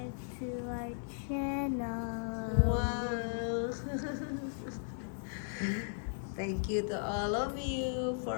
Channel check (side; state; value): right; silent; digital silence